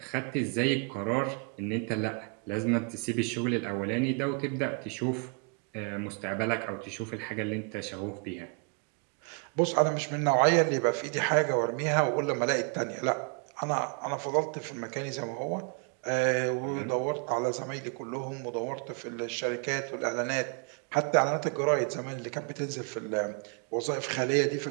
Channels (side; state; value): left; quieter; 37.7 dB